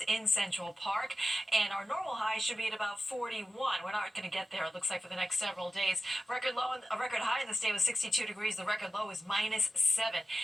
in Central Park. And our normal high should be at about 41. We're not going to get there, it looks like, for the next several days. Record high in the state was 62 degrees. The record low is -7.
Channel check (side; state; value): both; normal; correlation 0.93